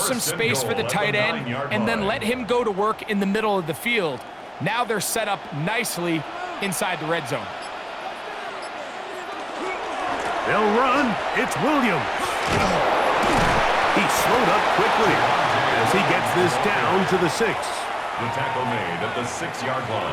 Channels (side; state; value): both; identical; correlation 1.00